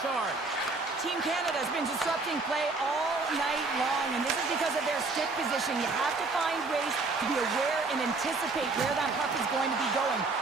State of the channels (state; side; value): quieter; left; 3.7 dB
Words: Team Canada has been disrupting play all night long, and this is because of their stick position. You have to find ways to be aware and anticipate where that puck is going to be going.